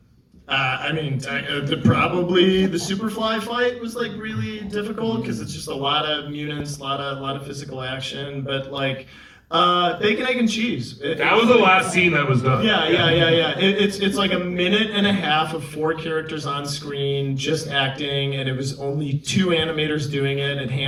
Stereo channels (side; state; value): both; identical; correlation 1.00